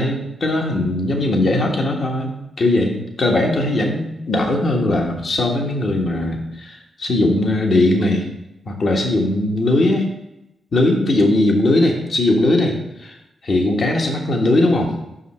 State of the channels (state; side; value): normal; both; correlation 0.78